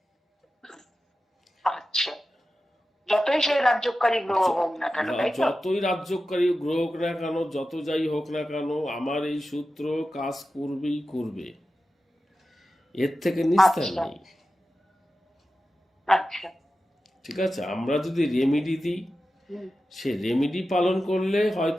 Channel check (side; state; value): both; normal; correlation 0.93